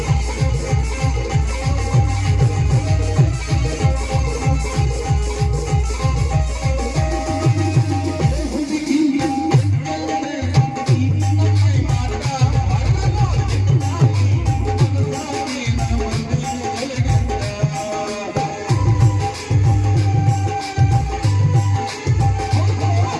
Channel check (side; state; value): both; identical; correlation 1.00